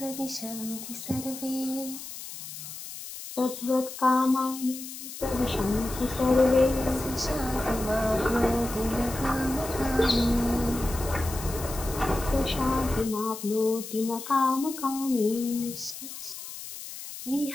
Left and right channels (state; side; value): noise; left; hiss, 11 dB below the sound